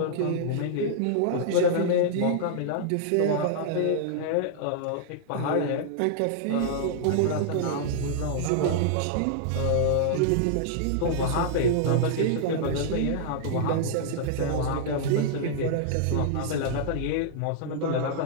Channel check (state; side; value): different; both; correlation -0.01